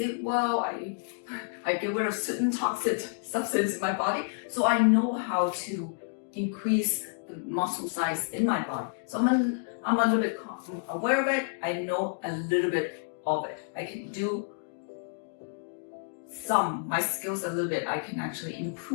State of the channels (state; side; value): silent; right; digital silence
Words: well. I get rid of certain toxic substance in my body. So I know how to increase the muscle size in my body. So I'm a little bit aware of it. I know a little bit of it. I can do my skills a little bit. I can actually